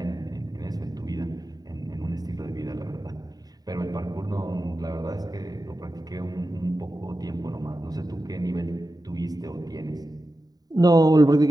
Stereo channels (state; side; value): late; left; 0.18 ms